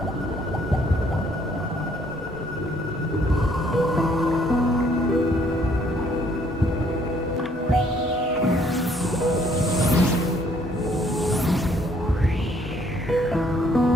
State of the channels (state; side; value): normal; both; correlation 0.64